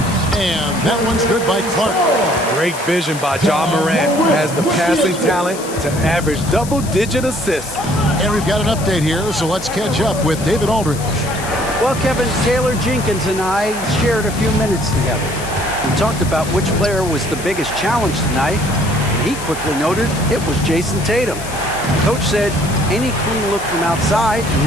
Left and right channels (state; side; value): noise; left; hiss, 12 dB below the sound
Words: And that one's good by Clark. Great vision by Ja Morant. Has the passing talent to average double-digit assists. And we've got an update here, so let's catch up with David Aldridge. Well, Kevin, Taylor Jenkins and I shared a few minutes together. We talked about which player was the biggest challenge tonight, and he quickly noted it was Jason Tatum. Coach said any clean look from outside and